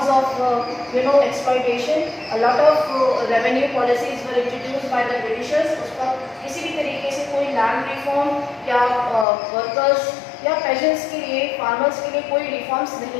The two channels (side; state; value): right; drops out; at 9.2 s